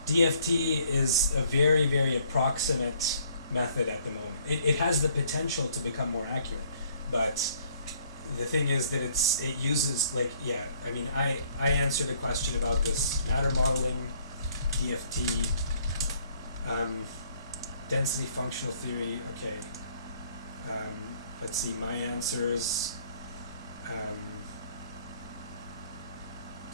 DFT is a very, very approximate method at the moment. It has the potential to become more accurate, but the thing is that it uses I answered a question about this matter modeling, DFT, density functional theory. Okay, let's see my answers.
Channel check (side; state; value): both; inverted; correlation -0.63